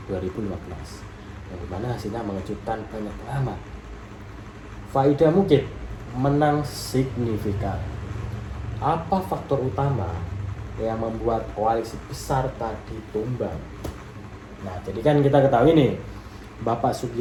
2015 yang dimana hasilnya mengejutkan banyak pengamat. Faida Mukid menang signifikan. Apa faktor utama yang membuat koalisi besar tadi tumbang? Nah, jadi kan kita ketahui nih, Bapak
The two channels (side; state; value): both; identical; correlation 1.00